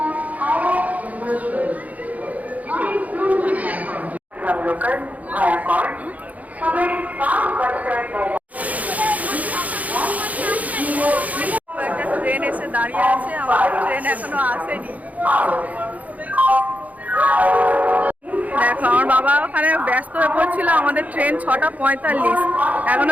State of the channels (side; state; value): left; late; 0.074 ms